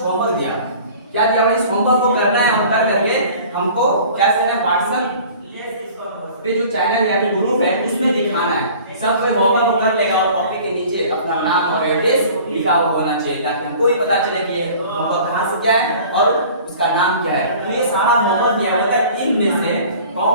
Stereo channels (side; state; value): both; inverted; correlation -0.46